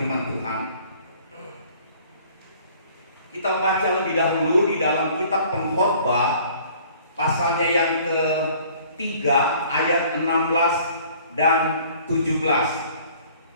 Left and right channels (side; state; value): both; inverted; correlation -0.54